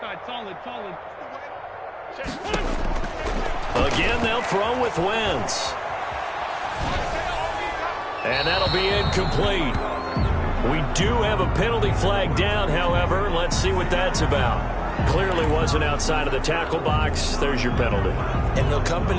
Again, they'll throw with Wentz. And that'll be incomplete. We do have a penalty flag down, however. Let's see what that's about. Clearly wasn't outside of the tackle box. There's your penalty. And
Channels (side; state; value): both; identical; correlation 1.00